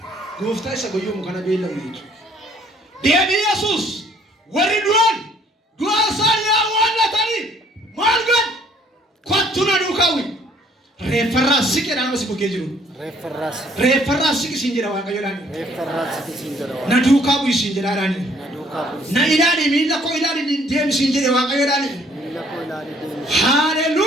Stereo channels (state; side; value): normal; both; correlation 0.61